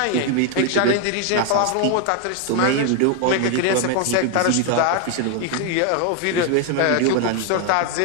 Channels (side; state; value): both; different; correlation 0.01